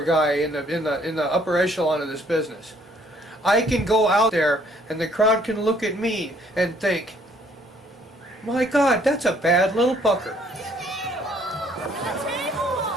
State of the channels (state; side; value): normal; both; correlation 0.63